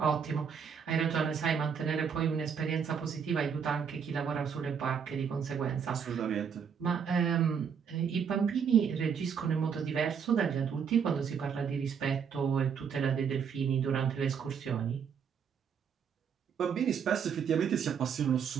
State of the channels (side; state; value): left; quieter; 7.0 dB